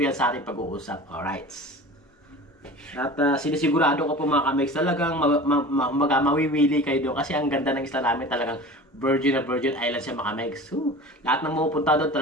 yan sa ating pag-uusap. Alright. At sinisigurado ko po mga kamex, talagang mawiwili kayo doon. Kasi ang ganda ng isla namin, talagang virgin na virgin island siya mga kamex. Lahat ng mapupunta doon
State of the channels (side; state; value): both; normal; correlation 0.38